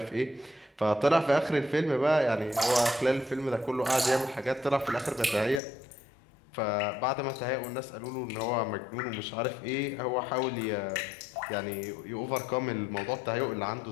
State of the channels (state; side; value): drops out; right; at 5.6 s